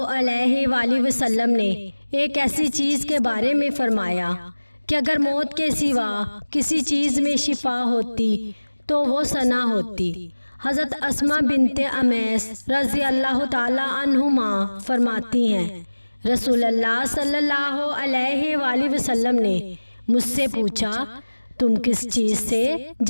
علیہ وآلہ وسلم نے ایک ایسی چیز کے بارے میں فرمایا کہ اگر موت کے سوا کسی چیز میں شفا ہوتی تو وہ ثنا ہوتی۔ حضرت اسماء بنت امیس رضی اللہ تعالی عنہما فرماتی ہیں، رسول اللہ صلی اللہ علیہ وآلہ وسلم نے مجھ سے پوچھا، تم کس چیز سے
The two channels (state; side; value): inverted; both; correlation -1.00